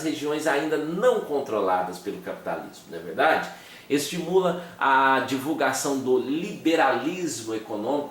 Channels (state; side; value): identical; both; correlation 1.00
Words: regiões ainda não controladas pelo capitalismo, não é verdade? Estimula a divulgação do liberalismo